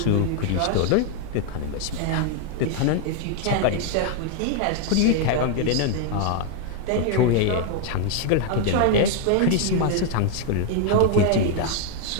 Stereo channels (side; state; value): both; different; correlation 0.00